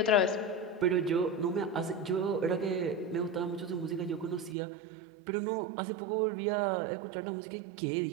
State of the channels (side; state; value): left; drops out; at 4.5 s